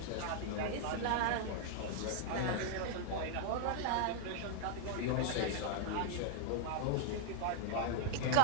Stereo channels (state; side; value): different; both; correlation 0.00